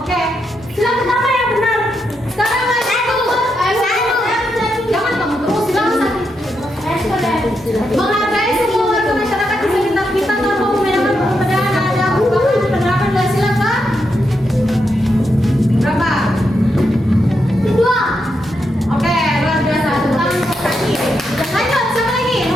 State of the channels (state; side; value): normal; both; correlation 0.83